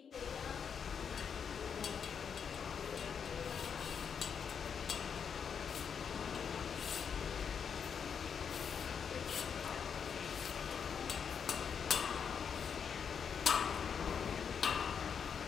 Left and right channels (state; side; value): quieter; right; 7.0 dB